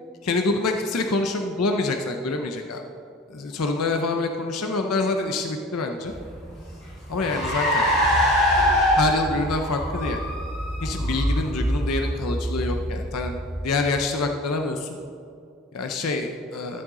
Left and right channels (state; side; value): normal; both; correlation 0.41